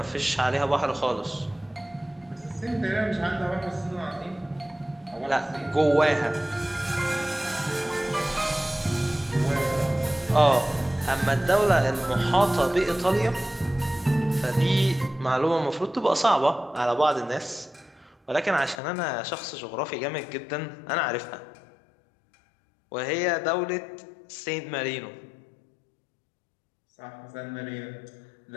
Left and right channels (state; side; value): drops out; right; at 18.8 s